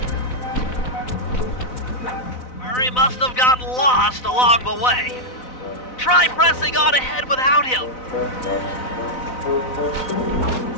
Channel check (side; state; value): right; late; 4.0 ms